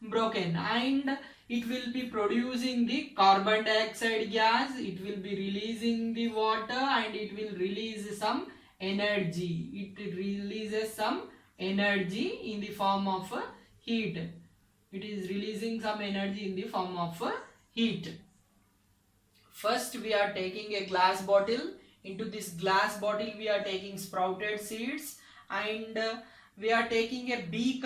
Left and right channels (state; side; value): identical; both; correlation 1.00